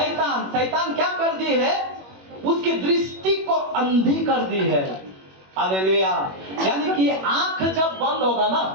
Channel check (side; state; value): left; late; 21 ms